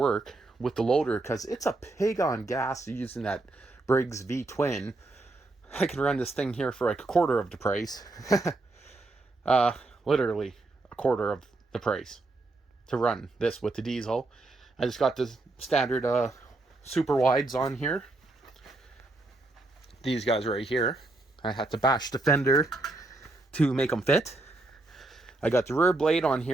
with the loader, because it's a pig on gas using that Briggs V-twin. I can run this thing here for like a quarter of the price. Literally a quarter of the price to run this with the diesel. I just got the standard super wides on here. These guys right here. I had to bash the fender to make them fit. I got the rear blade on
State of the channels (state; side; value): quieter; left; 3.0 dB